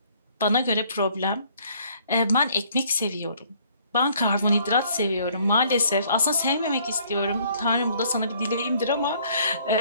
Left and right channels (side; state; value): both; inverted; correlation -0.61